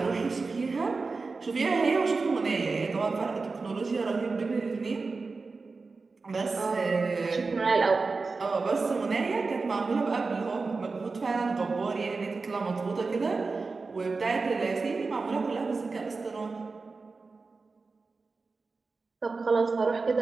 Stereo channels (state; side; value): quieter; left; 4.1 dB